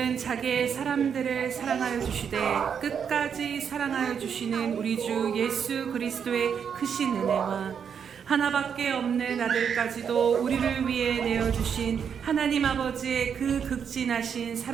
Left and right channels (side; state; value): left; quieter; 7.3 dB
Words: 자기의 사람들을 사랑하여 주시되 끝까지 사랑하여 주시는 우리 주 예수 그리스도의 크신 은혜와 하나밖에 없는 아들까지도 우리를 위해 내어주신 하나님 아버지의 그 극진하신